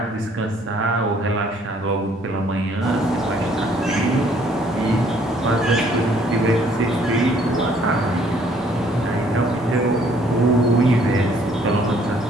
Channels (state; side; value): normal; both; correlation 0.62